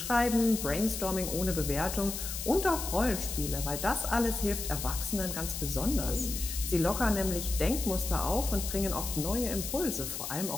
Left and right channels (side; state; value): left; noise; hiss, 6 dB below the sound